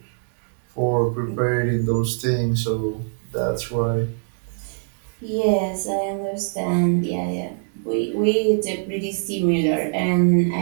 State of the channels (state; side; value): silent; left; digital silence